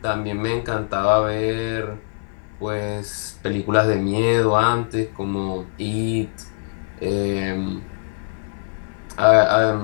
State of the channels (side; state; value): right; silent; 60 dB below the other